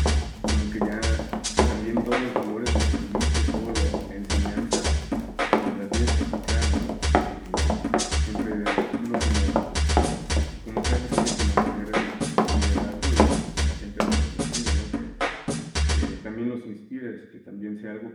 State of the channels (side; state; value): both; identical; correlation 1.00